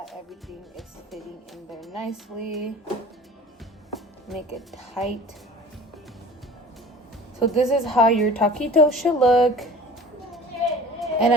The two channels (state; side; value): normal; both; correlation 0.42